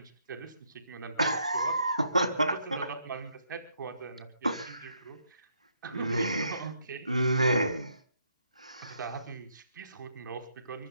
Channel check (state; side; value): inverted; both; correlation -0.72